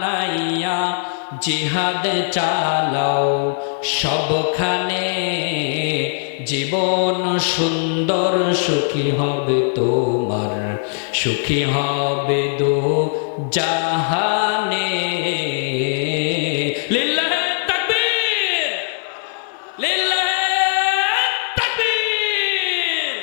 জিহাদ চালাও সবখানে, জীবন সুন্দর সুখী হবে তোমার, সুখী হবে দো জাহানে। লিল্লাহে তাকবীর, লিল্লাহে তাকবীর।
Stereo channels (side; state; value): right; silent; 66 dB below the other